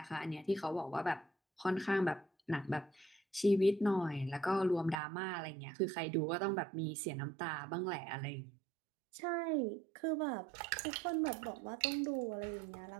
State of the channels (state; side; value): drops out; left; at 5.0 s